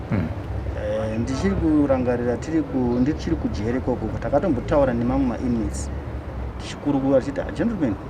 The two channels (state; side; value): identical; both; correlation 1.00